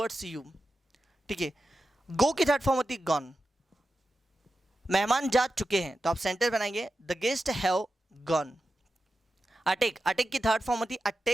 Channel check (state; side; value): normal; both; correlation 0.91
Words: you, ठीक है। गो की थर्ड फॉर्म होती है गॉन, मेहमान जा चुके हैं, तो आप सेंटेंस बनाएंगे the guest have gone. Attack, attack की थर्ड फॉर्म होती है